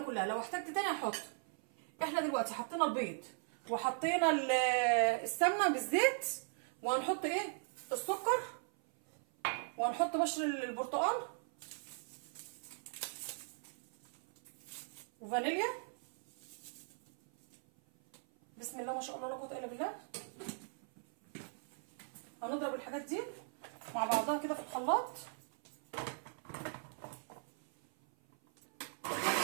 كلها، لو احتجت تاني هحط. احنا دلوقتي حطينا البيض وحطينا السمنه بالزيت، وهنحط ايه، السكر، وهنحط بشر البرتقال وفانيليا. بسم الله ما شاء الله لا قوه الا بالله. هنضرب الحاجات دي مع بعضها كده في الخلاط.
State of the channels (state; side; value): silent; left; 52 dB below the other